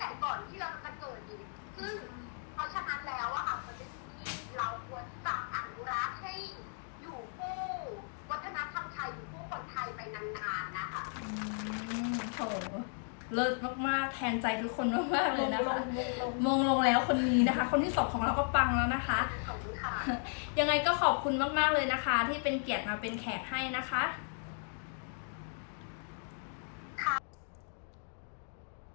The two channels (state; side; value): silent; right; 54 dB below the other